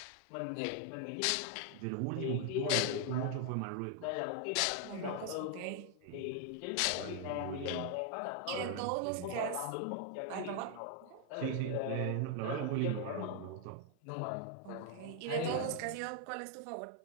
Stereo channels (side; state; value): both; different; correlation 0.00